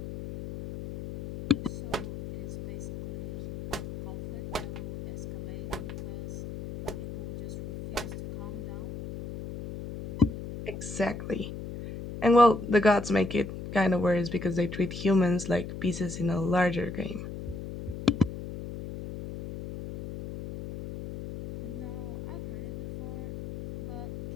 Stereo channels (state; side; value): noise; left; hum, 9 dB below the sound